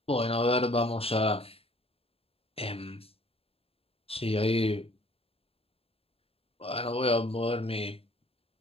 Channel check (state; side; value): late; right; 0.28 ms